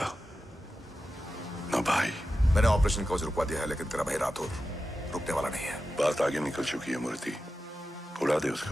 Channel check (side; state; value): both; normal; correlation 0.92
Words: ना भाई। मैंने ऑपरेशन कवच रुकवा दिया है, लेकिन तेरा भाई राठौर रुकने वाला नहीं है। बात आगे निकल चुकी है मूर्ति। उड़ा दे